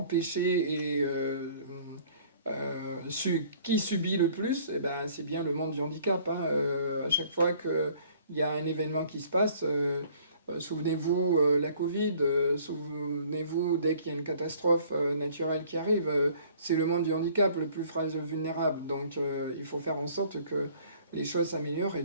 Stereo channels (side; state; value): both; inverted; correlation -0.55